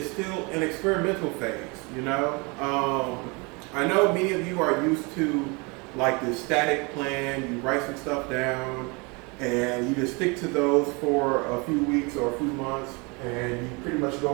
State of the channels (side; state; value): left; quieter; 29.0 dB